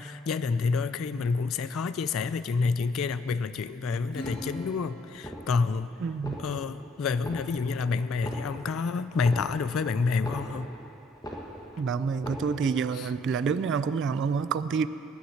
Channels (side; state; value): both; normal; correlation 0.65